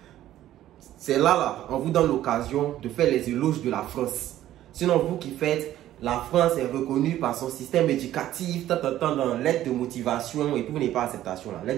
C'est là, on vous donne l'occasion de faire les éloges de la France. Sinon, vous qui faites, la France est reconnue par son système éducatif, dans l'aide de motivation, et puis vous n'avez pas acceptation là.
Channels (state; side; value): quieter; left; 13.1 dB